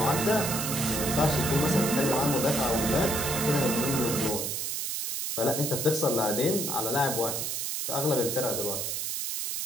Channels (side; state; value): right; noise; hiss, 2 dB below the sound